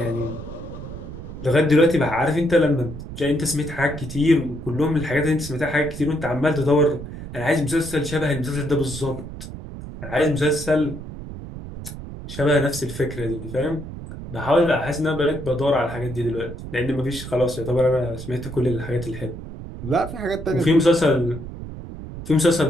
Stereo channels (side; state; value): right; noise; rumble, 11 dB below the sound